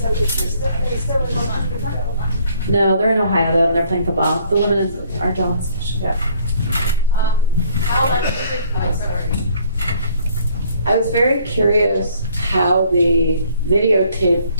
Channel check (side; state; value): both; inverted; correlation -0.61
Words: No, they're in Ohio though, and they're playing football. The women are jealous. Yeah. I was very curious how the videotape